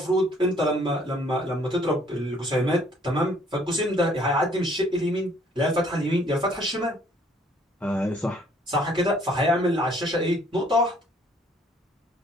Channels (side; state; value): both; normal; correlation 0.61